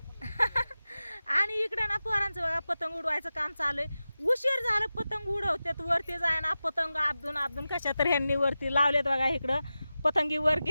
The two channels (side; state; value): both; inverted; correlation -0.94